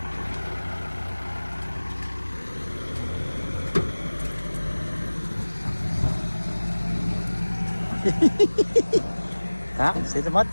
Ah, see the mud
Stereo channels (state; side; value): inverted; both; correlation -1.00